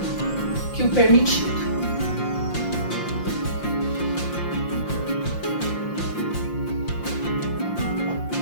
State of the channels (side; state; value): right; late; 5.7 ms